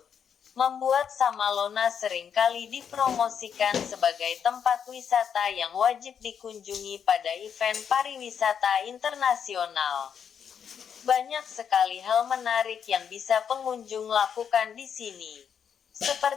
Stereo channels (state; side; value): quieter; right; 7.7 dB